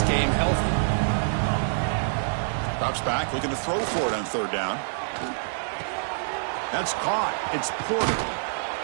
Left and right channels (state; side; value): silent; left; digital silence